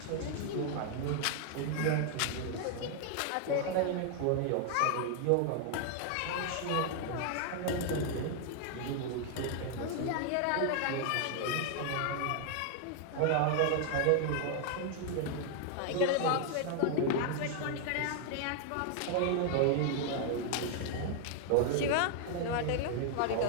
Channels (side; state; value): both; different; correlation 0.00